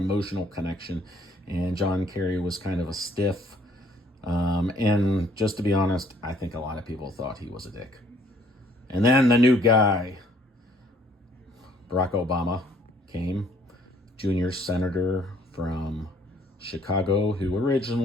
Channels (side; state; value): both; normal; correlation 0.61